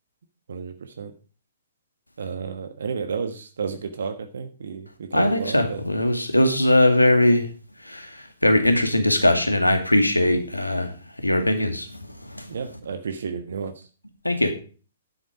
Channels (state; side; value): inverted; both; correlation -0.90